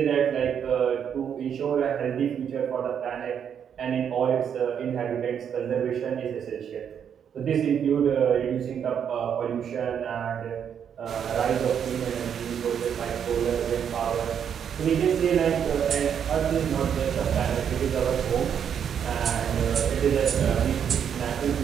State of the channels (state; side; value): quieter; left; 8.2 dB